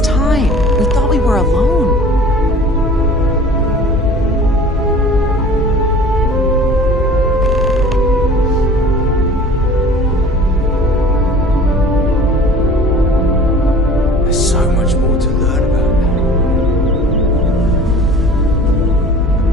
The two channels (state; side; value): normal; both; correlation 0.45